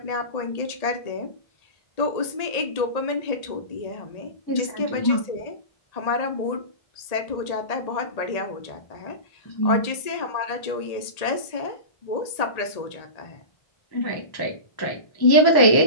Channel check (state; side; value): late; right; 1.8 ms